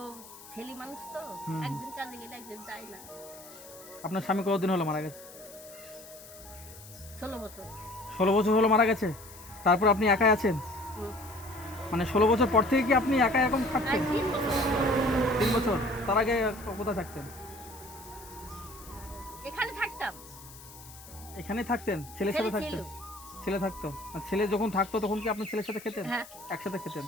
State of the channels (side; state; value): left; noise; hiss, 18 dB below the sound